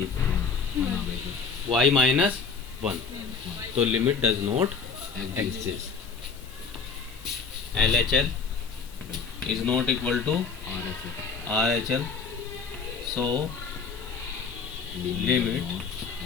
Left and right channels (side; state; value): right; quieter; 5.5 dB